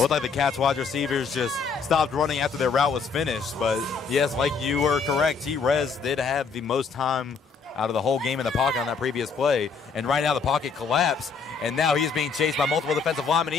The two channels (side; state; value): right; quieter; 5.3 dB